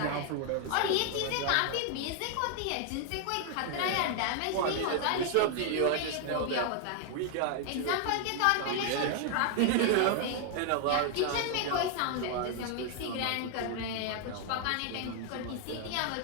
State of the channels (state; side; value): different; both; correlation 0.00